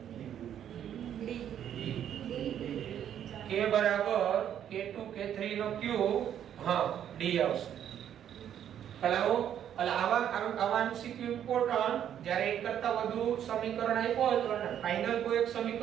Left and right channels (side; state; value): left; quieter; 9.9 dB